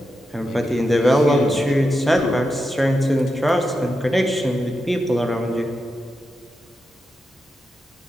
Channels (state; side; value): normal; both; correlation 0.88